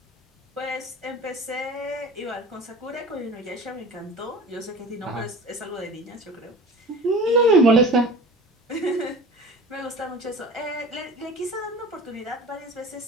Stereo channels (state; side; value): normal; both; correlation 0.38